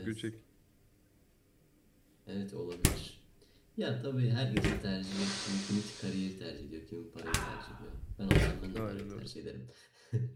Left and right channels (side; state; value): both; identical; correlation 1.00